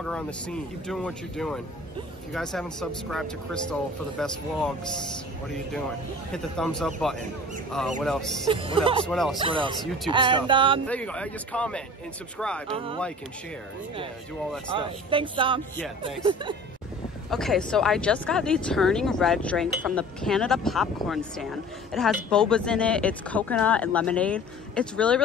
on the scene. Keep doing what you're doing. If you guys haven't subscribed to Krystal for the best vlogs, what are you doing? Hit the thumbs up button. What else? What else? What else? What else? YouTube stuff. There you go. Just comment and subscribe and like and share. And, yeah, do all that stuff. All right. Thanks, Tom. Yeah, thanks. Okay, so I just got the Turning Red drink from the Canada popcorn stand. It has bobas in it. It's coconut and lemonade. It's really,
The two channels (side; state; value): both; normal; correlation 0.43